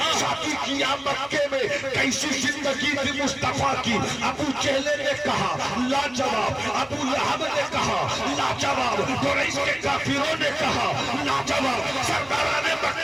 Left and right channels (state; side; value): noise; left; hum, 30 dB below the sound